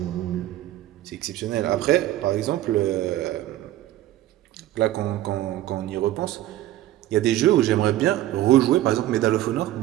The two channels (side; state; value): left; quieter; 14.3 dB